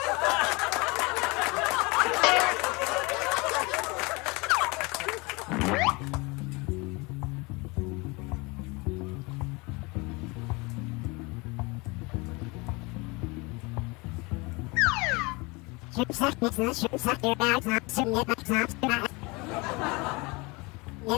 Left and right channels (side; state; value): right; quieter; 26.5 dB